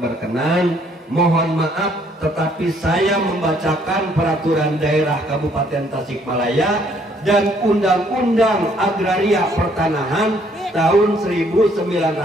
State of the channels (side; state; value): both; normal; correlation 0.65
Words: mohon maaf, tetapi saya membacakan peraturan daerah Kabupaten Tasikmalaya dan Undang-Undang Agraria Pertanahan tahun 1999